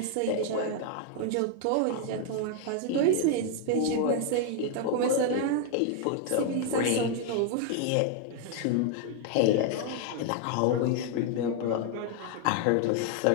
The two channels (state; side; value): different; both; correlation 0.00